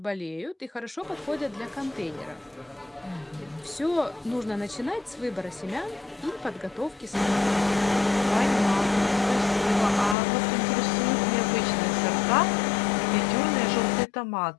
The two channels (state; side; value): drops out; right; at 10.2 s